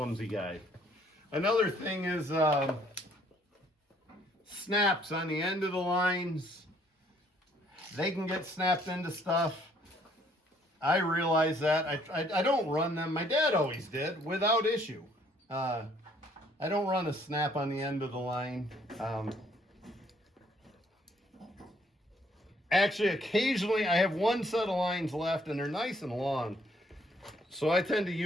guy. Another thing is snaps on the end of the lines. They can get snapped into stuff. I realize that. I don't run them. My dad always did without issue. I don't run a snap on the end of the line. Actually, occasionally I have one set of lines left and they're nice and long. So I tend to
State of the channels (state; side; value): normal; both; correlation 0.64